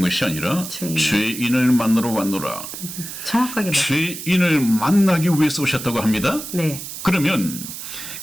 것이 아니라 죄인을 만나러 왔노라. 정확하게 죄인을 만나기 위해서 오셨다고 합니다. 네. 그러면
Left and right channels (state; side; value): noise; right; hiss, 9 dB below the sound